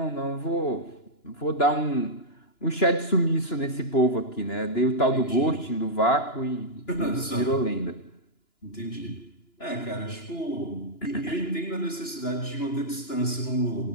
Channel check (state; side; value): late; right; 2.9 ms